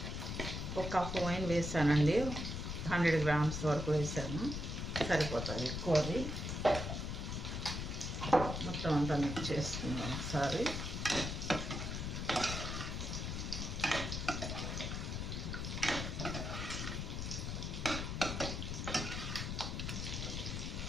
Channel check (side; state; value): left; noise; rumble, 3 dB below the sound